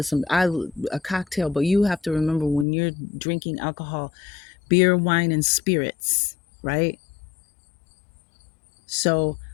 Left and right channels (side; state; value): right; drops out; at 2.7 s